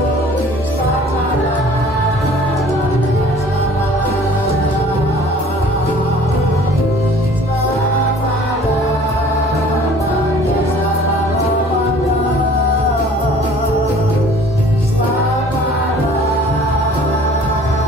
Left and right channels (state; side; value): normal; both; correlation 0.50